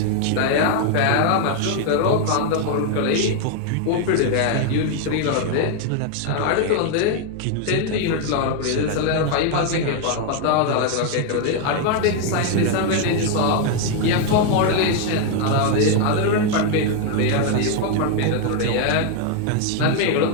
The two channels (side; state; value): both; different; correlation 0.01